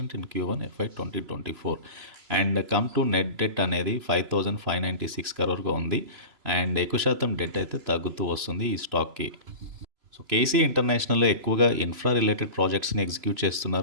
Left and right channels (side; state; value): left; late; 3.0 ms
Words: in Q1 FY 2024. And come to net debt అనేది 5,596 crore ఉంది. అండ్ ఎక్కువ శాతం డెట్ అయితే తగ్గుతూ వస్తుంది ఈ స్టాక్కి. సో కేసీ ఇంటర్నేషనల్లో ఎక్కువగా ఇన్ఫ్రా రిలేటెడ్ ప్రాజెక్ట్స్ని ఎగ్జిక్యూట్